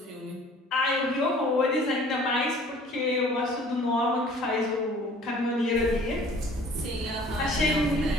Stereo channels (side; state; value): both; normal; correlation 0.51